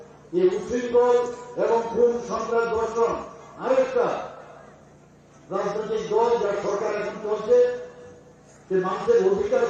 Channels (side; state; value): both; identical; correlation 1.00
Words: এই উচ্ছৃঙ্খল এবং খুন সন্ত্রাস ধর্ষণ আরেকটা রাজনৈতিক দল যার সরকার এখন চলছে, যে মানুষের অধিকার